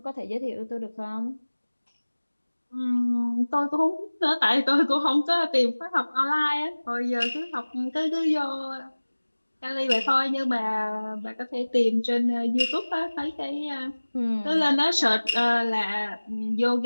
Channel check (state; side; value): inverted; both; correlation -1.00